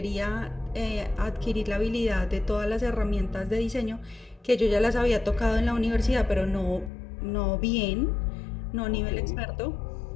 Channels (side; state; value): right; drops out; at 6.9 s